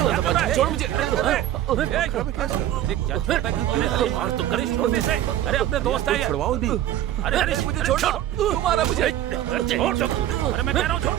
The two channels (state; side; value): quieter; left; 12.4 dB